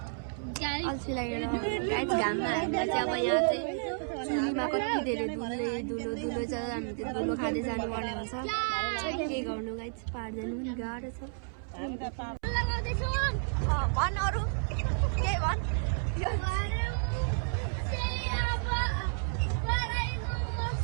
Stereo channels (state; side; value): silent; left; 57 dB below the other